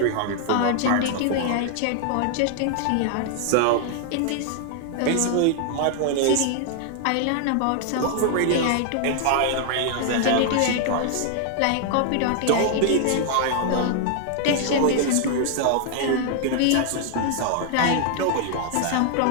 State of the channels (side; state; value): both; different; correlation 0.00